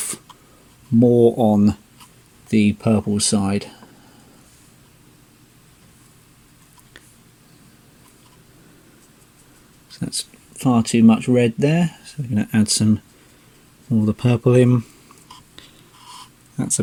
more on the purple side. So that's far too much red there, so we're going to add some more of the purple in. That's a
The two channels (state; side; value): identical; both; correlation 1.00